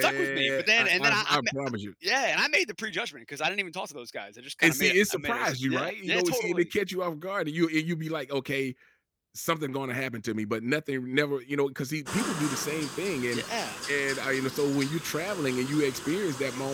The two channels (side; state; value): both; identical; correlation 1.00